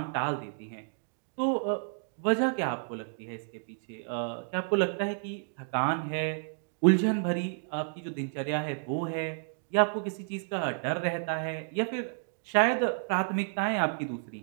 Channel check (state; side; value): silent; left; digital silence